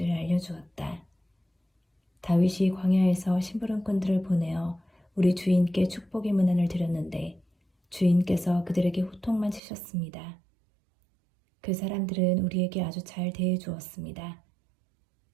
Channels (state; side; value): drops out; left; at 9.6 s